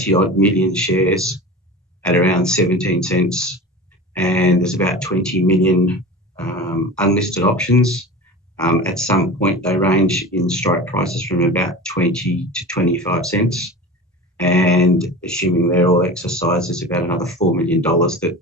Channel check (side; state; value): both; normal; correlation 0.33